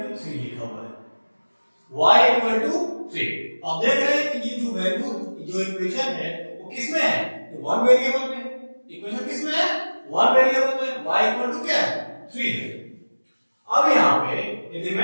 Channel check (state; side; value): inverted; both; correlation -1.00